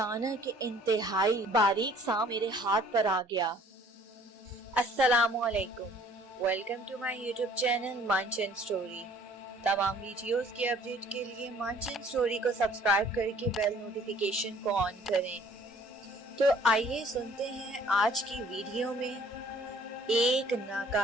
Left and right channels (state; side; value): normal; both; correlation 0.55